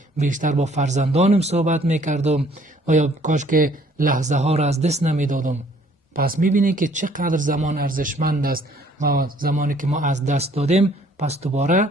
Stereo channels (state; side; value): normal; both; correlation 0.60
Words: بیشتر با فرزندانم صحبت میکردم و یا کاش که لحظه ها را از دست نمیدادم. پس میبینی که چقدر زمان ارزشمند است و زمانی که ما از دست دادیم پس دوباره